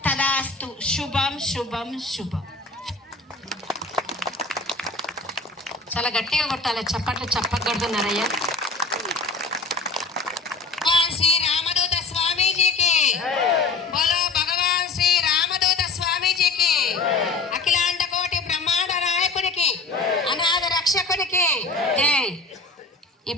తదాస్తు. శుభం శుభం శుభం. చాలా గట్టిగా కొట్టాలి, చప్పట్లు చెప్పకూడదున్నారయ్యా. శ్రీ రామదూత స్వామీజీకి బోలో, భగవాన్ శ్రీ రామదూత స్వామీజీకి, అఖిలాండ కోటి బ్రహ్మాండ నాయకునికి, అనాథ రక్షకునికి జై.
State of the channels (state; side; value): quieter; right; 3.8 dB